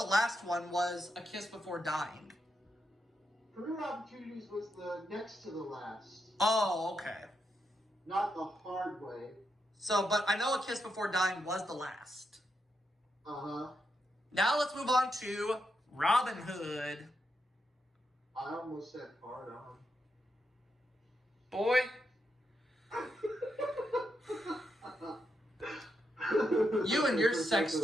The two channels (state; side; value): normal; both; correlation 0.83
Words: last one was A Kiss Before Dying. Career Opportunities was the next to the last. Oh, okay. Not The Hard Way. So, but I know A Kiss Before Dying was the last. Uh-huh. Now let's move on to Robin Hood. I almost said hard on. Boy. You and your sex